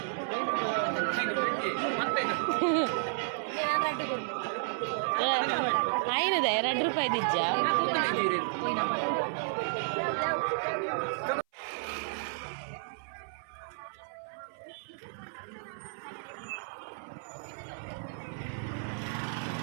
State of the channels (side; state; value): left; silent; 56 dB below the other